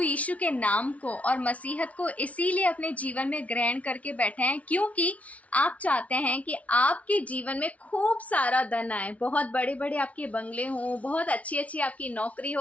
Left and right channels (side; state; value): right; late; 0.067 ms